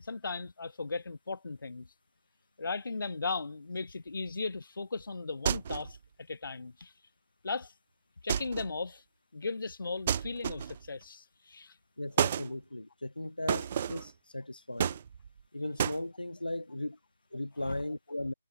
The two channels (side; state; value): both; inverted; correlation -0.76